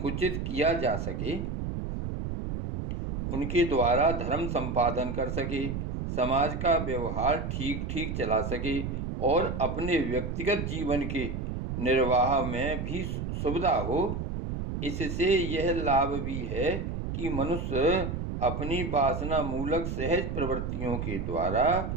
किया जा सके, उनके द्वारा धर्म संपादन कर सके, समाज का व्यवहार ठीक ठीक चला सके और अपने व्यक्तिगत जीवन के निर्वाह में भी सुविधा हो। इससे यह लाभ भी है कि मनुष्य अपनी वासना मूलक सहज प्रवृत्तियों के द्वारा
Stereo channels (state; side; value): noise; right; rumble, 4 dB below the sound